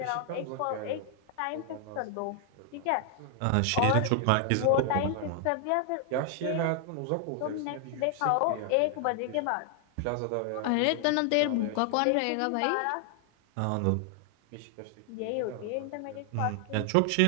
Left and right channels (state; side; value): different; both; correlation 0.00